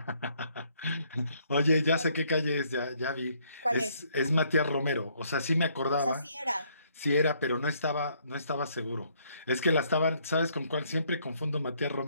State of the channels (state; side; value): inverted; both; correlation -0.68